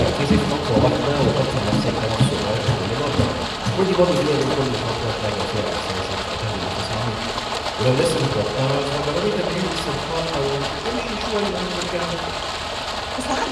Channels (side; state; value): both; identical; correlation 1.00